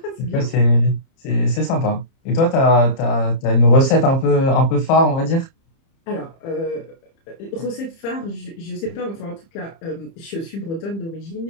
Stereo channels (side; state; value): right; late; 30 ms